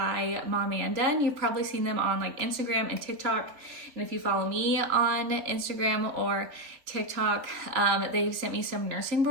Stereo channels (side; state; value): left; late; 3.6 ms